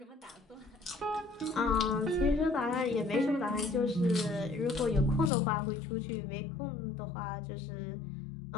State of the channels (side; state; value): right; drops out; at 5.3 s